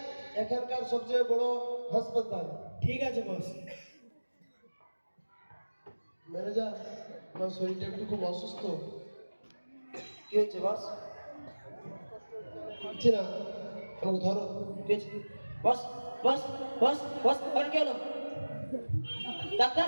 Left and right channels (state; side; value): inverted; both; correlation -1.00